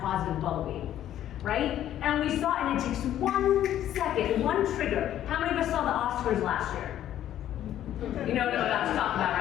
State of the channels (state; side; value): quieter; right; 11.7 dB